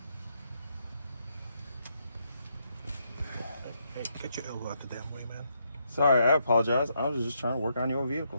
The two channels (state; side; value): inverted; both; correlation -0.77